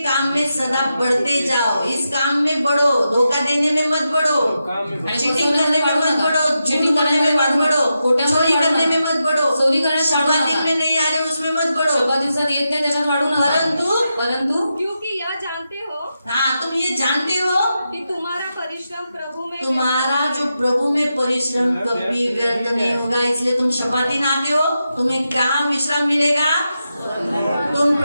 काम में सदा बढ़ते जाओ. इस काम में बढ़ो, धोखा देने में मत बढ़ो, काम में आणि चीटिंग करने में मत बढ़ो, चीटिंग करने में मत बढ़ो, चोरी करने में मत बढ़ो, चोरी करायला शब्दात में नहीं आ रहे उसमें मत बढ़ो. शोभा दिवसात येत नाही त्याच्यात वाढू नका. परंतु क्योंकि यह जानते हो हाँ, तुम ये जानते हो कि तुम्हारा परिश्रम प्रभु में तुम्हारा जो प्रभु में परिश्रम कभी व्यर्थ नहीं होगा. इसलिए तुम शपाती नाते हो, तुम्हें कहाँ विश्राम मिलेगा? तुम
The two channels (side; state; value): both; inverted; correlation -0.88